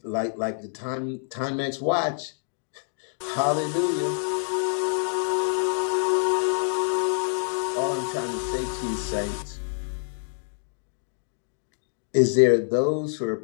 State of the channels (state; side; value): silent; right; digital silence